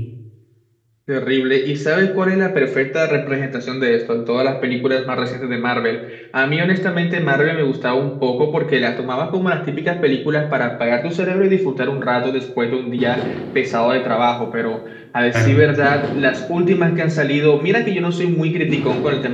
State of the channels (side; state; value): both; identical; correlation 1.00